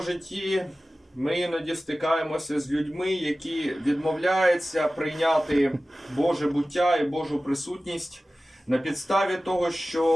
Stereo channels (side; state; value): both; normal; correlation 0.96